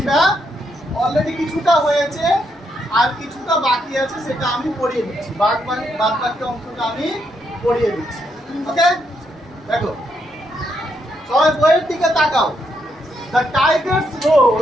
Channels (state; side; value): normal; both; correlation 0.78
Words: অলরেডি কিছুটা হয়েছে, আর কিছুটা বাকি আছে, সেটা আমি পড়িয়ে দিচ্ছি। বাদ বাকি অংশটা আমি পড়িয়ে দিচ্ছি। ওকে, দেখো সবাই বইয়ের দিকে তাকাও। The tigers